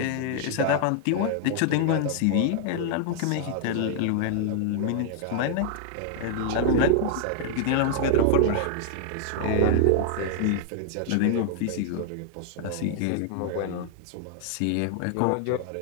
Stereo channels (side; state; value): both; different; correlation 0.00